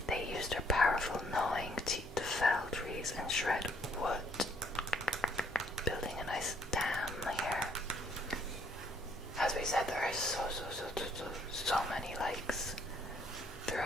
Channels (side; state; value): both; normal; correlation 0.67